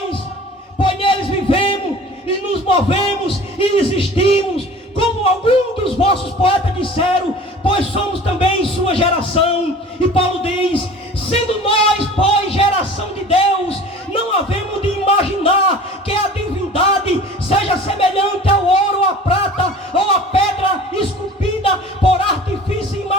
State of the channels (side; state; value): both; normal; correlation 0.43